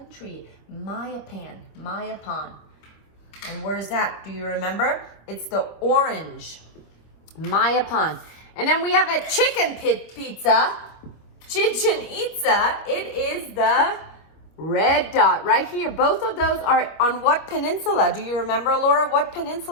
Mayapan. And where's that? Do you remember? It's the orange, Mayapan. And then we have a chicken pizza, Chichen Itza. It is the red dot right here. Both of those are on what peninsula? Do you remember, Laura? What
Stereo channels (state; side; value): late; right; 25 ms